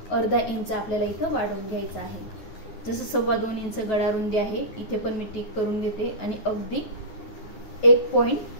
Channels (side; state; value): right; late; 9.8 ms